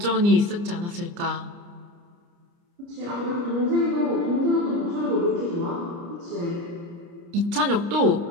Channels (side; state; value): left; late; 29 ms